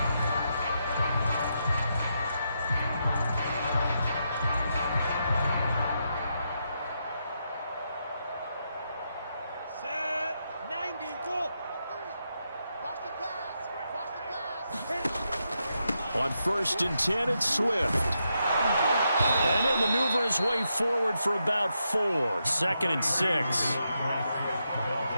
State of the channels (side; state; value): both; inverted; correlation -0.83